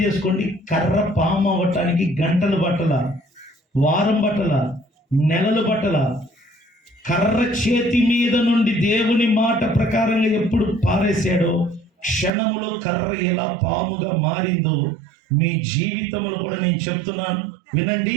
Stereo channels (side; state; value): left; drops out; at 12.3 s